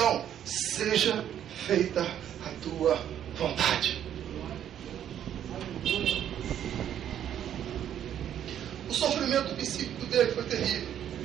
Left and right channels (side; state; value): left; quieter; 10.2 dB